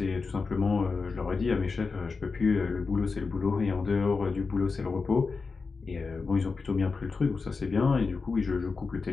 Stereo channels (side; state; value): right; quieter; 4.5 dB